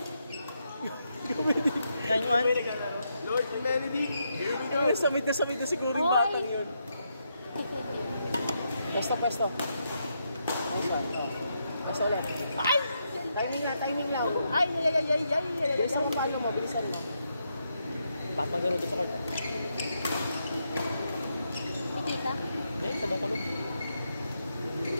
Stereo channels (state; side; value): inverted; both; correlation -0.81